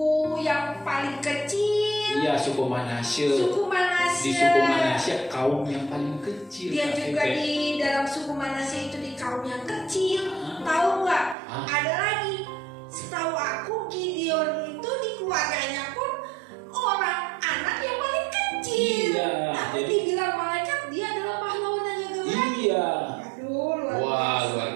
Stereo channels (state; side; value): drops out; left; at 11.4 s